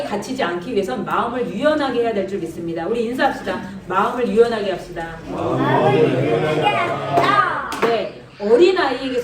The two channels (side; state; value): both; identical; correlation 1.00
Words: 갇히지 않기 위해선 마음을 유연하게 해야 될 줄 믿습니다. 우리 인사합시다. 마음을 유연하게 합시다. 네,